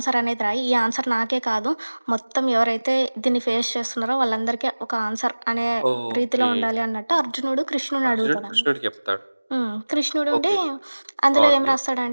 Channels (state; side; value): inverted; both; correlation -1.00